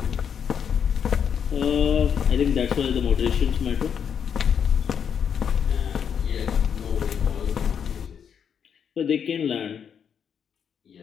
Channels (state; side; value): quieter; right; 7.7 dB